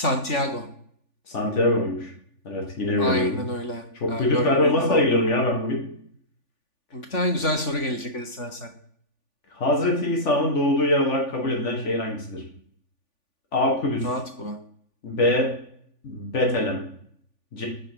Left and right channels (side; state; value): right; late; 3.5 ms